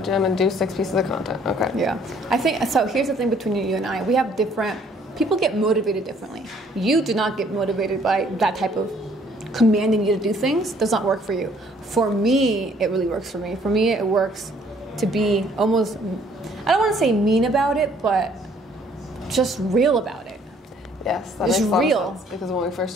and do 6 pieces of content. Okay. Yeah. I think so. Here's the thing between you and I. We have different. People get motivated differently. You do not get motivated by that type of commanding you to do things. Does not work for you. For me, it really works for me. For me, it works to be almost. I don't want to say mean about it, but just real about it. Yes, that It's makes a lot real. of sense. Because when we first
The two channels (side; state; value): both; normal; correlation 0.61